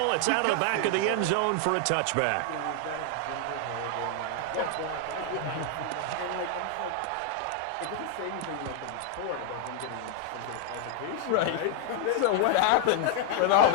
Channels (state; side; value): different; both; correlation 0.00